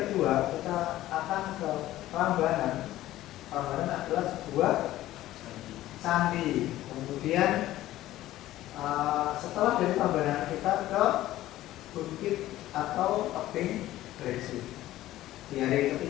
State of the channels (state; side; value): quieter; right; 14.9 dB